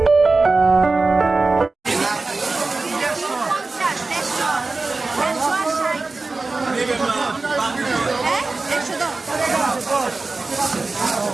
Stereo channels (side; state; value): left; quieter; 3.6 dB